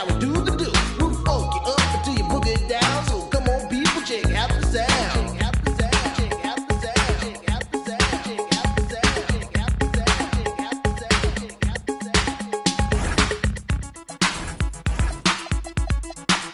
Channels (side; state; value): both; identical; correlation 1.00